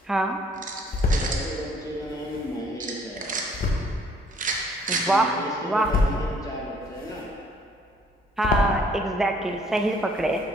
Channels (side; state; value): both; normal; correlation 0.61